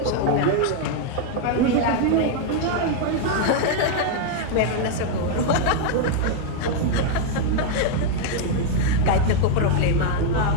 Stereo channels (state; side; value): different; both; correlation 0.00